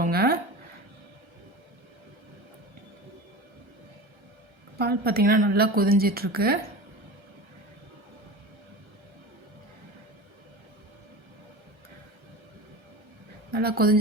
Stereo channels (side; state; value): left; late; 1.3 ms